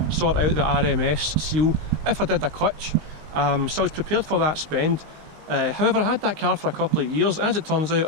sort out the RMS seal if I did a clutch, so I was prepared for that spend. However, I had that car for a couple of years. As it turns out,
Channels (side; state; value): left; late; 19 ms